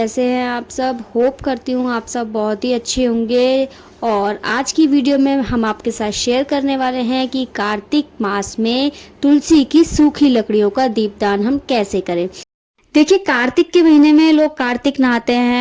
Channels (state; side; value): identical; both; correlation 1.00